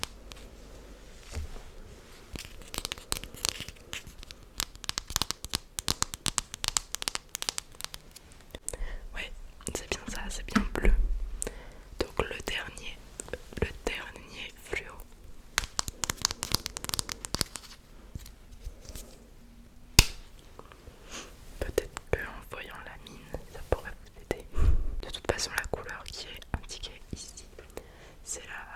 Ouais, c'est bien ça, c'est bien bleu. Donc le dernier fluo. Peut-être qu'en voyant la mine, ça pourrait vous aider. De toute façon, la couleur qui est indiquée ici, c'est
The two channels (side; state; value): both; identical; correlation 1.00